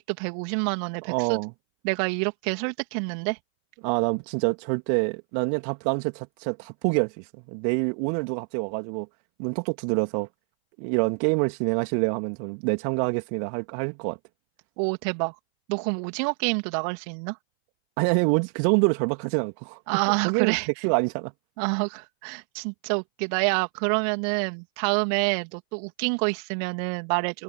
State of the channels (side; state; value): left; silent; 60 dB below the other